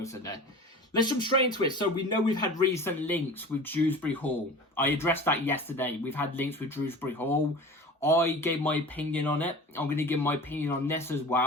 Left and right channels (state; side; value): normal; both; correlation 0.37